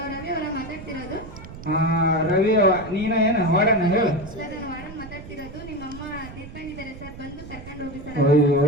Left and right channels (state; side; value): noise; right; rumble, 14 dB below the sound